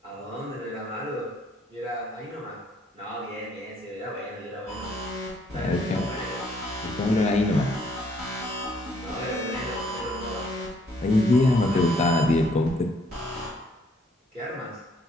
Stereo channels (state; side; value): normal; both; correlation 0.66